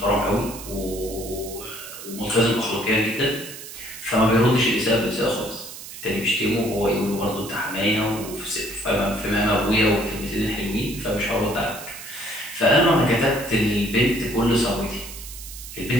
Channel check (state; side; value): noise; right; hiss, 13 dB below the sound